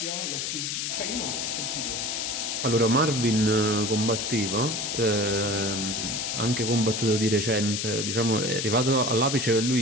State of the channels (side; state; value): left; noise; hiss, 2 dB below the sound